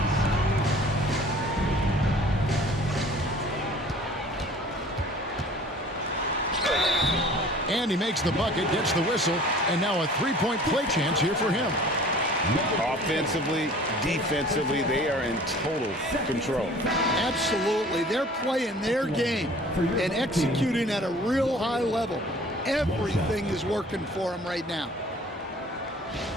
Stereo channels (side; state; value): both; normal; correlation 0.49